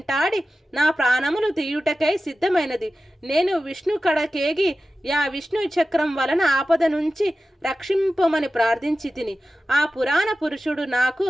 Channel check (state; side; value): normal; both; correlation 0.94